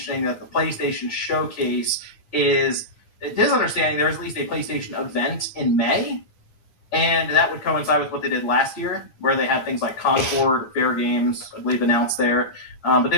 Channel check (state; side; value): late; right; 9.9 ms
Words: that the PlayStation Showcase is, it is understanding there's at least a PlayStation event in May. And that would coincide with what they did last year, where they had things like Concord, Fair Games, I believe, announced there. But